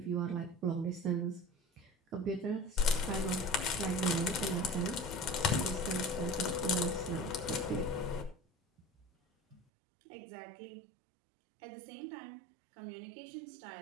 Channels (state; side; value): drops out; left; at 9.6 s